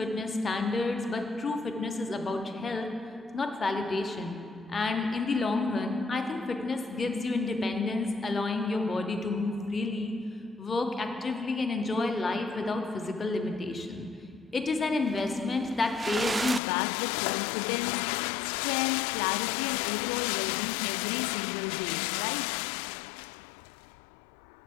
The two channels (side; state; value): right; drops out; at 16.6 s